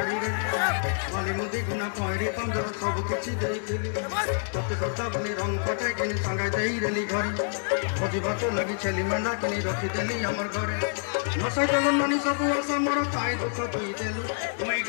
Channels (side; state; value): right; silent; 60 dB below the other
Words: रे माली मोदी खाना पहरी चांदर सब किछि देई थिली तते सजा बनी रंग फटाई किनी संगा देई रेली घरे भोजी भात लगी छेली मेंढा किनी रखी देली हमर घरे नसाई देलु ननी सब आशा मोर पाई दुख दी देलु मुई